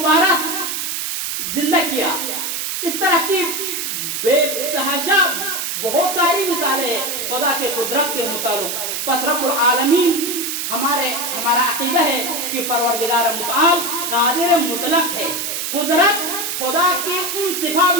زندہ کیا۔ اس طرح کی بے تحاشا بہت ساری مثالیں ہیں خدا کے قدرت کے متعلق۔ پس رب العالمین ہمارا عقیدہ ہے کہ پروردگار متعال قادر مطلق ہے۔ قدرت خدا کی ان صفات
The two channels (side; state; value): right; noise; hiss, 3 dB below the sound